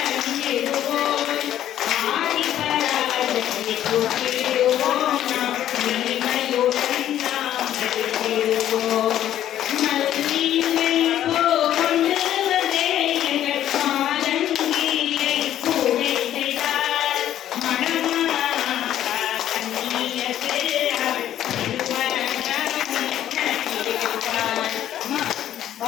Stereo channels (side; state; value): right; quieter; 11.7 dB